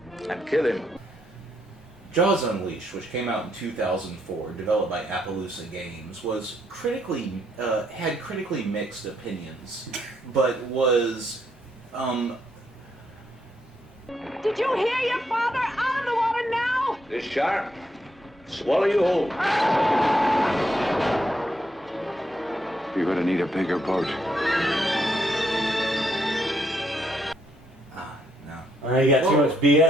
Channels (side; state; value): both; normal; correlation 0.75